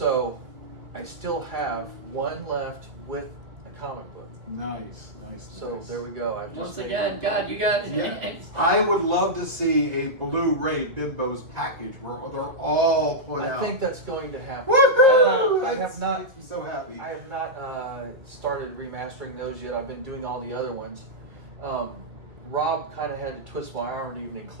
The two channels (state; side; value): late; left; 2.0 ms